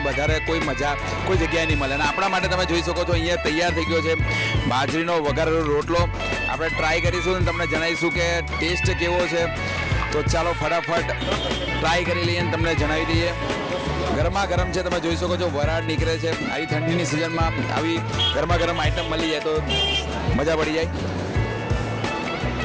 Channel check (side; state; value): both; identical; correlation 1.00